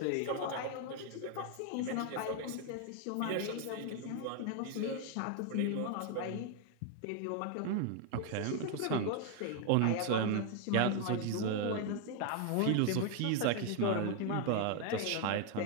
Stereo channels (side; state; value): both; different; correlation 0.01